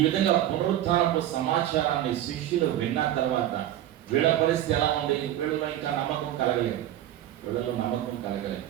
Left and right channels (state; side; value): quieter; left; 12.6 dB